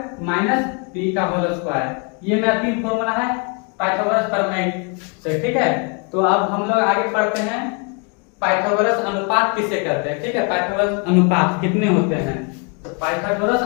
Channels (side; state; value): right; quieter; 35.1 dB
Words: माइनस B का होल स्क्वायर। ये मेरा तीन फॉर्मूला है पाइथागोरस प्रमेय से। ठीक है, तो अब हम लोग आगे पढ़ते हैं पाइथागोरस अनुपात किसे कहते हैं। ठीक है, पाइथागोरस अनुपात कितने होते हैं, तो पाइथागोरस